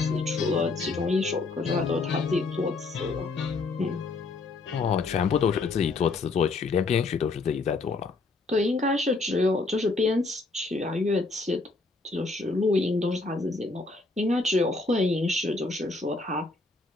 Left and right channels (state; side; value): quieter; right; 3.6 dB